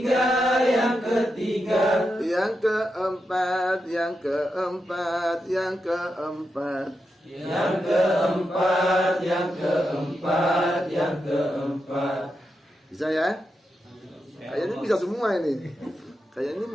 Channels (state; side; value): normal; both; correlation 0.87